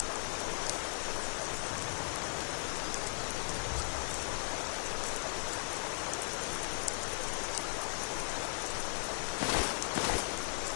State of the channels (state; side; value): silent; right; digital silence